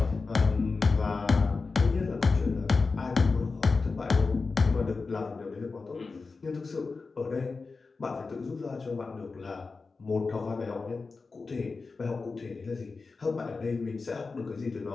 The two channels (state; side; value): quieter; right; 4.2 dB